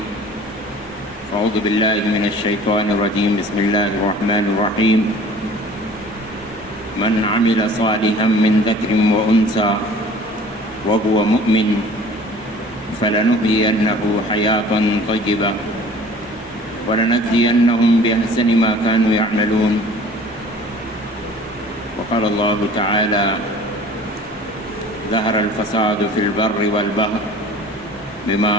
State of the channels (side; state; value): both; normal; correlation 0.47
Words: أعوذ بالله من الشيطان الرجيم بسم الله الرحمن الرحيم من عمل صالحا من ذكر وأنثى وهو مؤمن فلنحيينه حياة طيبة ولنجزينهم بأحسن ما كانوا يعملون وقال الله تعالى ظهر الفساد في البر والبحر بما